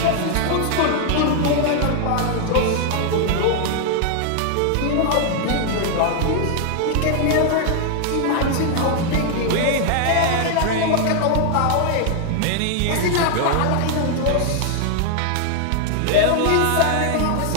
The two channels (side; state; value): both; different; correlation 0.00